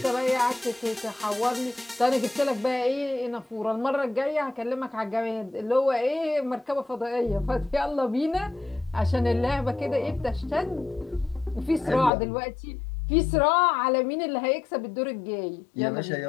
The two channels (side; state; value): right; drops out; at 12.1 s